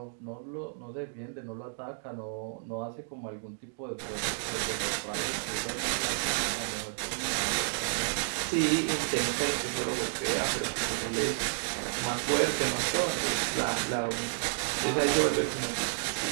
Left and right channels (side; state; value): left; silent; digital silence